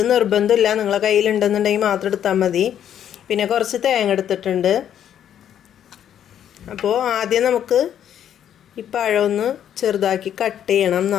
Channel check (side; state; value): right; quieter; 9.9 dB